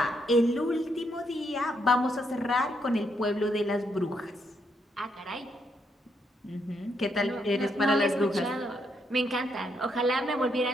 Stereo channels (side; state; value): both; normal; correlation 0.77